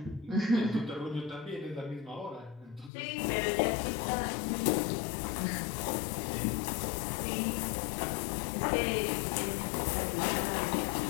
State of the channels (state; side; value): drops out; right; at 2.9 s